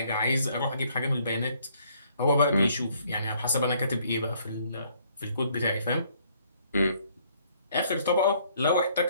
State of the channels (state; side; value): inverted; both; correlation -0.64